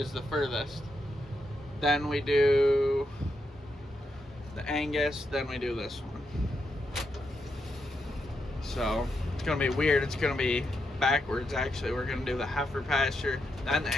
the furthest. Then we do the Angus, then we do this one. So it's gonna be weird. It's gonna be backwards actually. We're gonna do the heifer pasture, then the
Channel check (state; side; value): normal; both; correlation 0.83